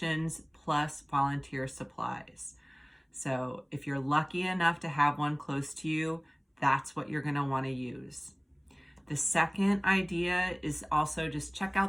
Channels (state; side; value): identical; both; correlation 1.00